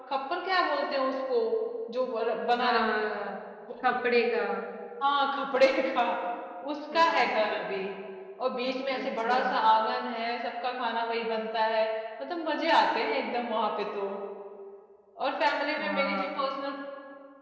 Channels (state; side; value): identical; both; correlation 1.00